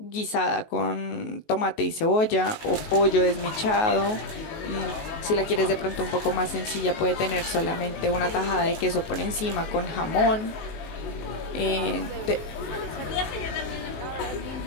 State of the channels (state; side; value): late; right; 19 ms